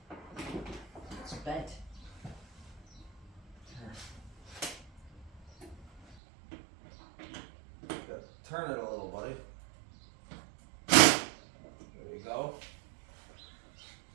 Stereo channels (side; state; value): left; drops out; at 6.2 s